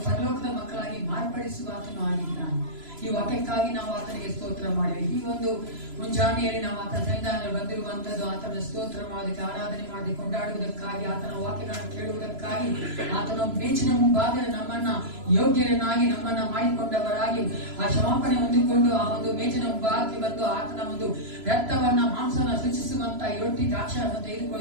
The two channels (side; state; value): left; late; 3.0 ms